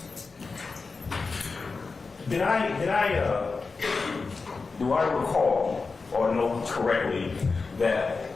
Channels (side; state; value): right; quieter; 4.3 dB